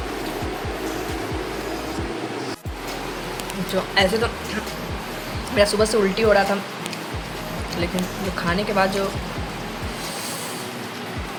जो ऐसे तो मेरा सुबह से उल्टी हो रहा था, लेकिन जो खाने के बाद जो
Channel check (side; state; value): both; identical; correlation 1.00